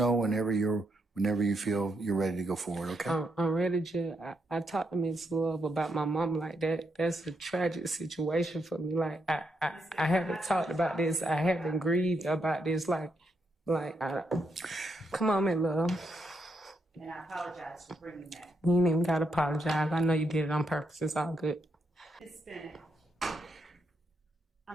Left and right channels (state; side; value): normal; both; correlation 0.80